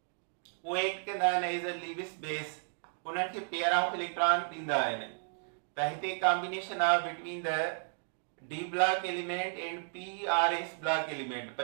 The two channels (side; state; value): left; silent; digital silence